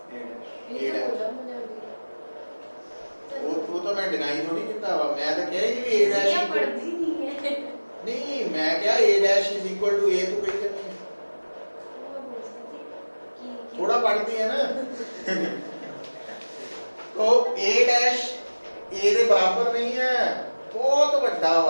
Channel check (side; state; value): both; inverted; correlation -1.00